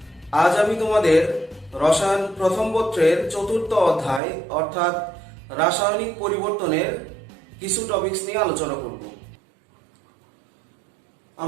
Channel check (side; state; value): left; drops out; at 4.2 s